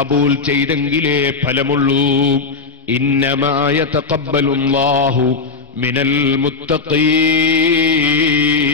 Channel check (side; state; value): right; quieter; 4.3 dB